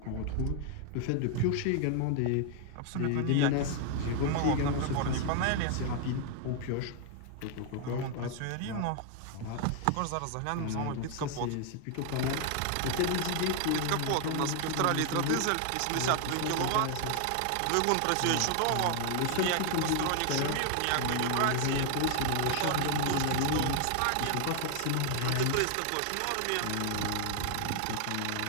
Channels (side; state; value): both; different; correlation 0.00